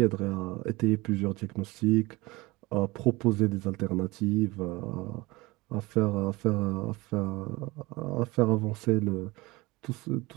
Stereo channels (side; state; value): left; quieter; 22.2 dB